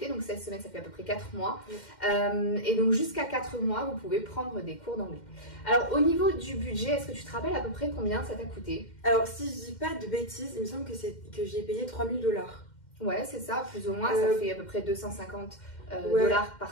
Donc 16 semaines, ça fait à peu près 4 mois. Et donc jusqu'à 4 mois, vous pouvez prendre des cours d'anglais. Alors au niveau du budget, est-ce que tu te rappelles à peu près combien ça t'a coûté? Alors si je dis pas de bêtises, il me semble que j'ai payé 3 000 $. Ouais, c'est ça, plus ou moins. Ça fait à peu près 250 $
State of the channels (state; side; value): late; right; 2.1 ms